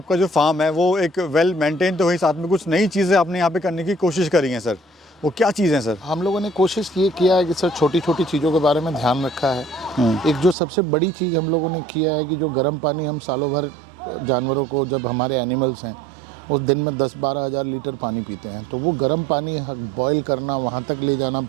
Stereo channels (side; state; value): left; drops out; at 10.6 s